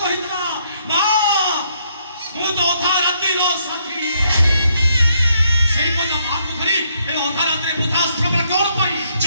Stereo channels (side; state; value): both; inverted; correlation -0.72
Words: କହିଥିଲା ମା ମୁଁ ତ ଅଧା ରାତିର ସାଥୀ ସେଇ ପୁଅ ତା ମାଆକୁ ଧରି ଏ ଅଧା ରାତିରେ ବୃଦ୍ଧାଶ୍ରମରେ କଣ ପାଇଁ